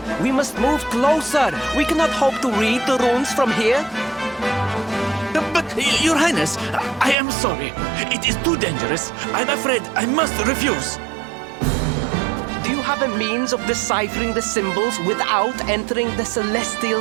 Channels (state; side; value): drops out; left; at 7.2 s